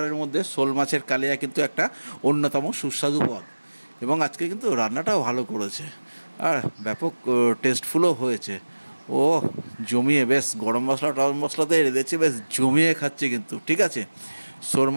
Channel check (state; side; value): inverted; both; correlation -1.00